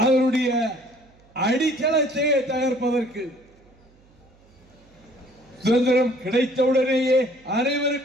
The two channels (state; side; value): noise; right; hum, 30 dB below the sound